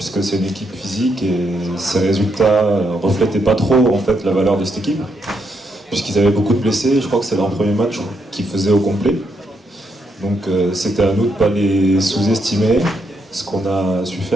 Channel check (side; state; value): both; normal; correlation 0.78